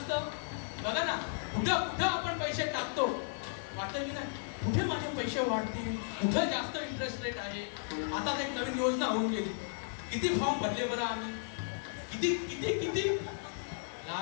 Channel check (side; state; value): right; silent; digital silence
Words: बघा ना कुठं आपण पैसे टाकतो वाटतं की नाही कुठे माझे पैसे वाढतील कुठं जास्त इंटरेस्ट रेट आहे आता एक नवीन योजना होऊन गेली किती फॉर्म भरले बरं आम्ही किती